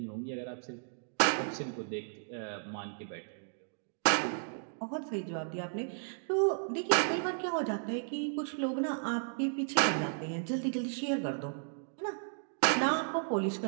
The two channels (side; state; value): left; silent; digital silence